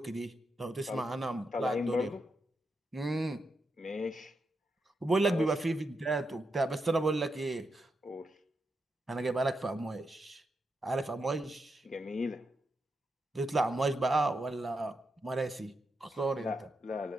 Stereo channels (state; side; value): normal; both; correlation 0.84